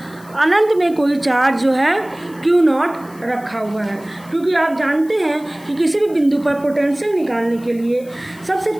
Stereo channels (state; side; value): noise; left; hiss, 25 dB below the sound